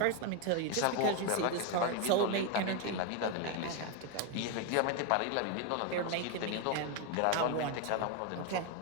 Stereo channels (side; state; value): both; different; correlation 0.01